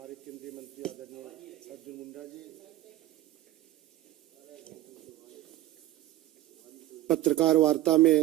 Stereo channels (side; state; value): left; quieter; 15.2 dB